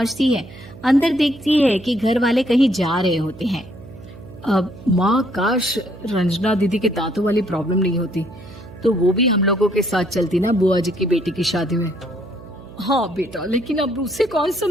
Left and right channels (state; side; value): noise; right; hum, 17 dB below the sound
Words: है, अंदर देखती है कि घर वाले कहीं जा रहे होते हैं। अब माँ, काश रंजना दीदी के दांतों वाली प्रॉब्लम नहीं होती, तो वो भी हम लोगों के साथ चलती ना बुआ जी की बेटी की शादी में। हाँ बेटा, लेकिन अब उसे कौन